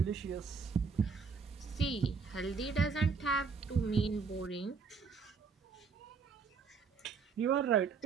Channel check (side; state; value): left; quieter; 5.3 dB